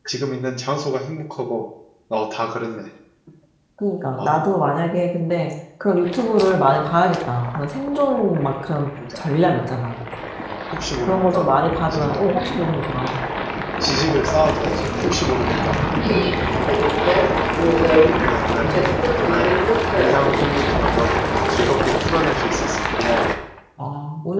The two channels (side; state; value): both; identical; correlation 1.00